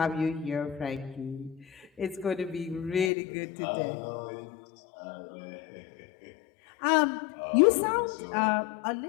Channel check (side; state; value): right; drops out; at 3.1 s